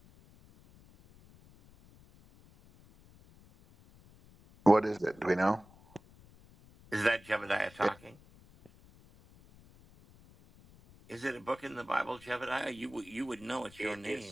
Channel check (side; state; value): left; noise; rumble, 25 dB below the sound